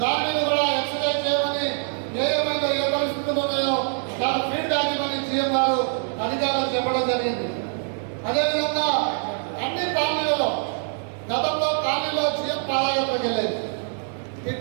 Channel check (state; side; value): silent; left; 62 dB below the other